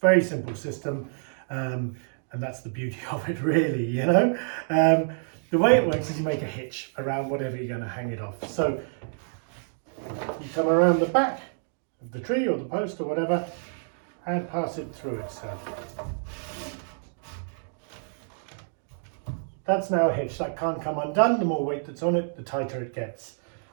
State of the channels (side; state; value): left; silent; digital silence